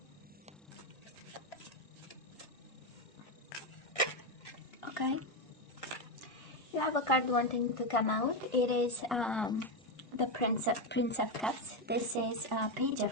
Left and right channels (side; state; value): both; normal; correlation 0.09